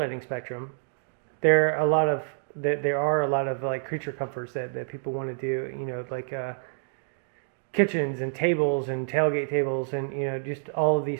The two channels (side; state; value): left; silent; digital silence